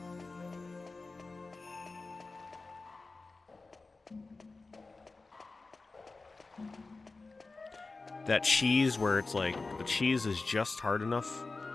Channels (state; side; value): quieter; right; 3.7 dB